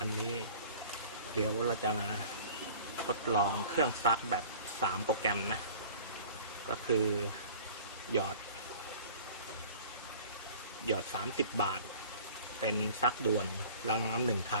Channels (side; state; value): both; inverted; correlation -0.45